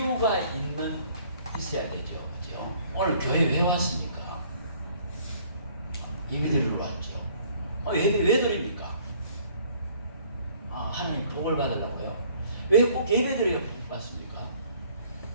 있어야 되죠. 그렇죠? 오늘 교회 왜 왔습니까? 예배 드리러 왔죠. 예배 왜 드립니까? 하나님 복을 받으려고요. 왜 꼭 예배 드려야 복 받습니까?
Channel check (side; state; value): both; inverted; correlation -0.58